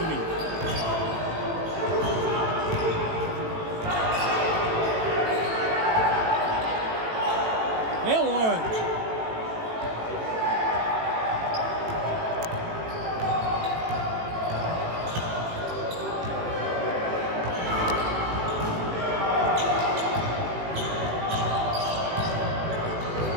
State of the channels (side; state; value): left; late; 18 ms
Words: me. They won.